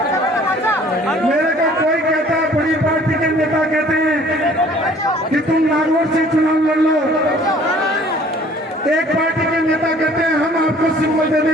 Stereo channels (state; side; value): normal; both; correlation 0.54